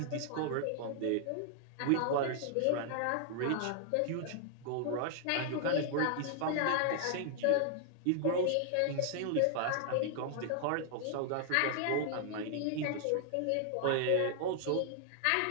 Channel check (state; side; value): different; both; correlation -0.01